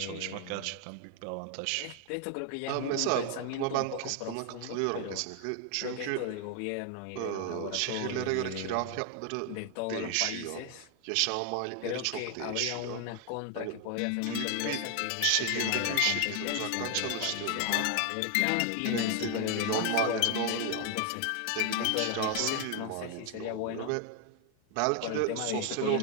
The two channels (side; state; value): both; different; correlation 0.01